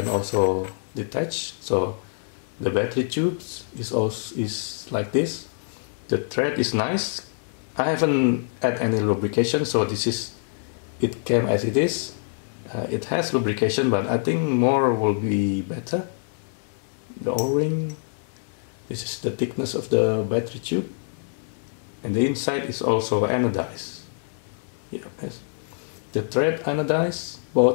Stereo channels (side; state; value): right; silent; 58 dB below the other